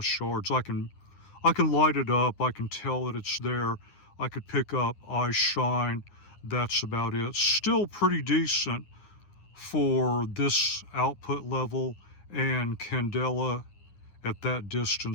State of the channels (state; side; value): late; right; 9.8 ms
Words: yards. I can light it up. I can tell that it's there. I could pick up eye shine. That's about it. Still pretty decent for this output level and candela at that